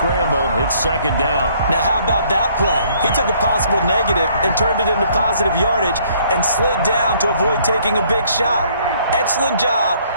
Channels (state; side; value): inverted; both; correlation -0.63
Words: It's 2nd down. Now, how about that play? He took a possible negative and turned it into positive yardage and slid down to avoid taking a big shot. Excellent job